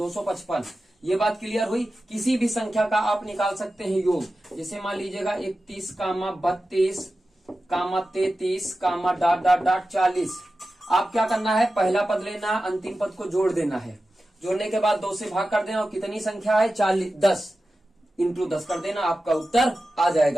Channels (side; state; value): both; normal; correlation 0.93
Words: ये बात क्लियर हुई। किसी भी संख्या का आप निकाल सकते हैं योग। जैसे मान लीजिएगा 31, 32, 33, डाट डाट डाट 40। आप क्या करना है? पहला पद लेना, अंतिम पद को जोड़ देना है। जोड़ने के बाद 2 से भाग कर देना, और कितनी संख्या है? 40, 10 इंटू 10 कर देना, आपका उत्तर आ